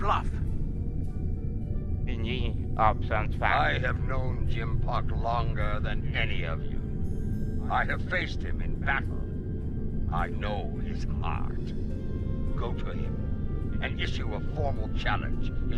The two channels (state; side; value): identical; both; correlation 1.00